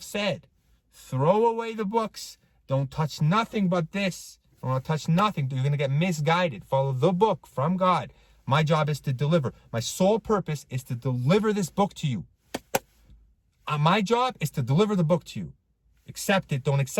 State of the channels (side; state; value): both; identical; correlation 1.00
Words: said, throw away the books. Don't touch nothing but this. Don't touch nothing. You're going to get misguided. Follow the book from God. My job is to deliver. My sole purpose is to deliver this book to you. My job is to deliver the book to you. Accept it. Don't